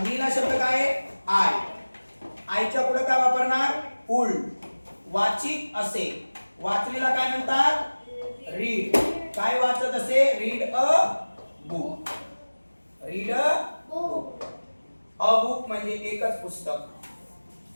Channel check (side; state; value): both; inverted; correlation -1.00